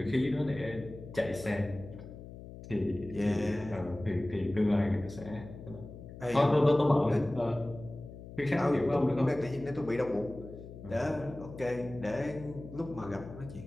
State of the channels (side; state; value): left; noise; hum, 14 dB below the sound